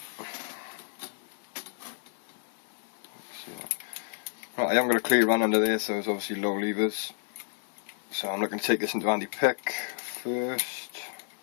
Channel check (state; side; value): silent; right; digital silence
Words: Right, I haven't got a clear run under there, so there's obviously low levers. So I'm looking to take this into anti-pick first.